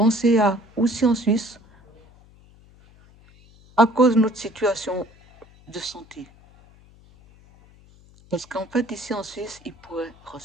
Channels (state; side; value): noise; left; hum, 27 dB below the sound